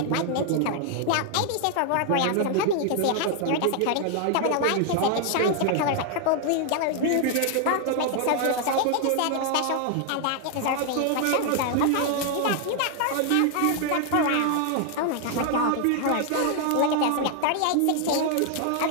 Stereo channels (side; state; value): both; different; correlation 0.00